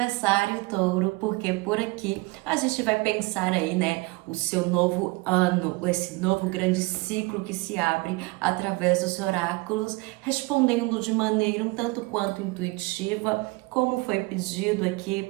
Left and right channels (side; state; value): left; quieter; 24.7 dB